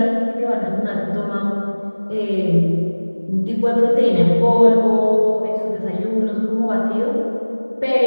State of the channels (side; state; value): both; inverted; correlation -1.00